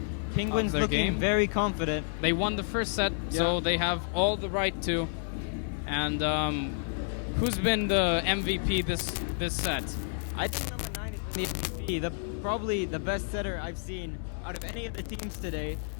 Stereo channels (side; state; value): right; silent; digital silence